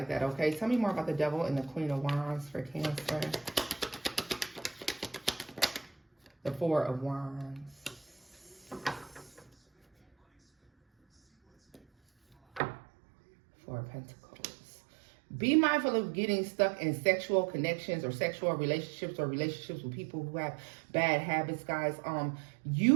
that, okay? Tell me more about the Devil and the Queen of Wands for Cancer. The Four of Wands. Four of Pentacles. Be mindful of getting stuck in sexual connections or sexual relationships or relationships with people who have bad habits, guys. You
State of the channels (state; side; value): drops out; left; at 12.6 s